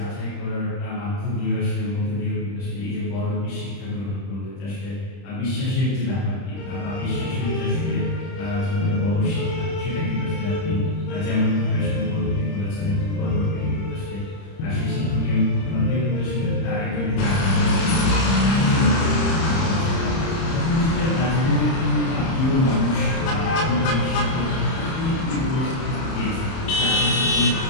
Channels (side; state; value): right; late; 30 ms